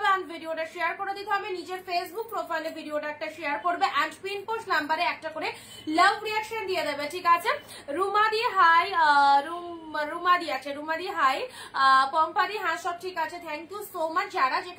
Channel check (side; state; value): both; identical; correlation 1.00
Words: এন্ড ভিডিওটা শেয়ার করে দিতে হবে। নিজের ফেসবুক প্রোফাইলে ভিডিওটা একটা শেয়ার করবে এন্ড পিন পোস্ট নাম্বারে একটা করে লাভ রিয়াকশন দিয়ে দেবে, ঠিক আছে। রুমাদি হাই, রুমাদি আছে, রুমাদি হাই, পম্পাদি হ্যাঁ সব ঠিক আছে, থ্যাংক ইউ সো মাচ। যারা